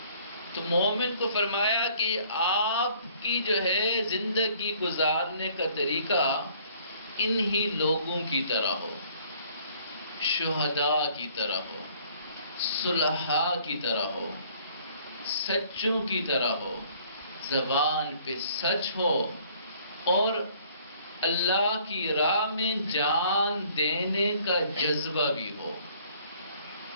تو مومن کو فرمایا کہ آپ کی جو ہے زندگی گزارنے کا طریقہ انہی لوگوں کی طرح ہو، شہداء کی طرح ہو، صلحاء کی طرح ہو، سچوں کی طرح ہو، زبان پہ سچ ہو، اور اللہ کی راہ میں جان دینے کا جذبہ بھی ہو،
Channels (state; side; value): inverted; both; correlation -0.58